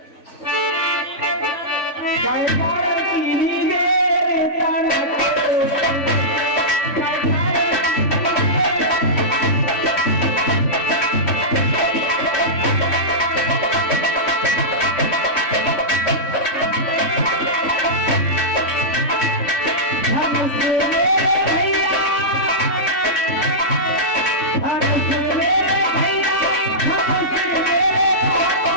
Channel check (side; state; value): right; late; 3.5 ms